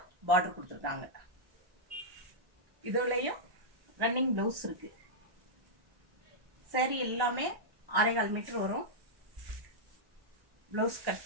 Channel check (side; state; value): left; late; 1.1 ms